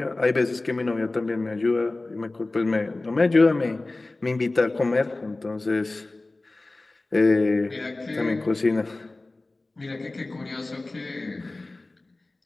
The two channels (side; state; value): right; quieter; 3.0 dB